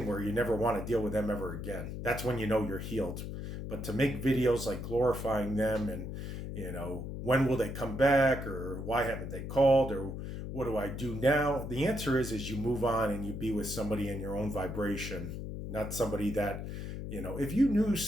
where you never want to deal with them ever again. That's when you know you're healed. But to make videos like glorifying them and, when will they come back, or why haven't they called, or what do I do now? The answer is you move on and you be with somebody in your own vibration, not somebody that, if you knew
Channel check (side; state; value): left; noise; hum, 6 dB below the sound